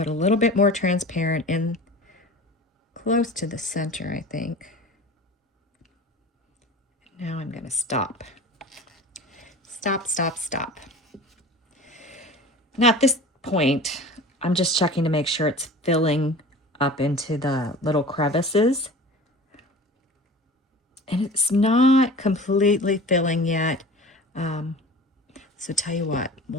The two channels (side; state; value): both; normal; correlation 0.39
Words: a little bit more transparent in close to the center, I think. Now I'm going to stop. Stop, stop, stop. Now at this point, I'm just checking to make sure it's filling up into the little crevices. And it's not completely filling yet. So tell you what,